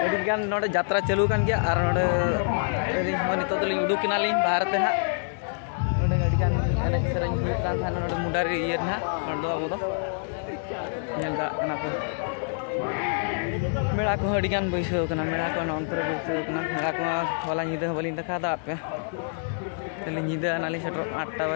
अडी गान नोडे यात्रा चालू कान गया और नोडे अडी हो नितो तो लिंग उडुक किना लिंग भारत ते ना नोडे अडी गान एने सेरेंग हुई कान थान नोडे मुडारी ये ना नोडे अब दो नेल दड़ा कना पे मेड़ा को अडी गान बैसो कना मेड़ा को नंतर बैसो कना मेड़ा को होला निदे बलिन देखा दा पे तले निदे नाली सेटर 8टा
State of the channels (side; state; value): right; silent; digital silence